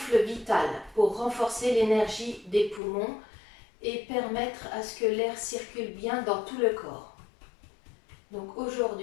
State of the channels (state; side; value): drops out; right; at 2.8 s